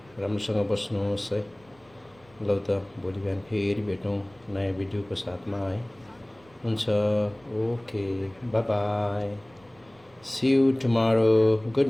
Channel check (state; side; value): noise; right; rumble, 29 dB below the sound